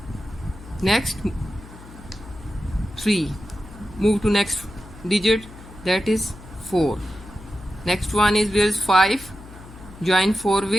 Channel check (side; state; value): left; noise; hum, 18 dB below the sound